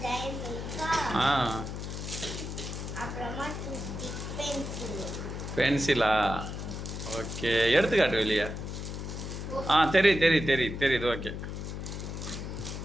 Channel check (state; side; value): noise; left; hum, 6 dB below the sound